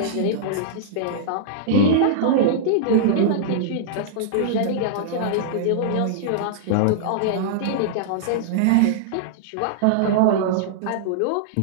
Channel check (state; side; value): different; both; correlation -0.02